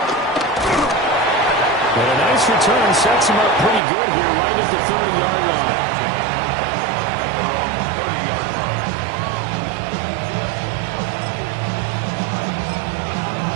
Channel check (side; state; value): left; drops out; at 3.8 s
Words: And a nice return sets him up pretty good here right at the 30-yard line.